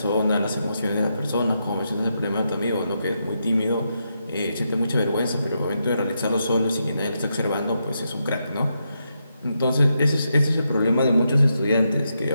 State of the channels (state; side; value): inverted; both; correlation -0.83